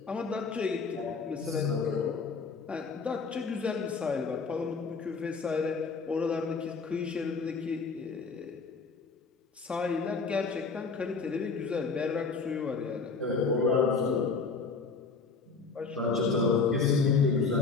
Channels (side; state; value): right; quieter; 4.7 dB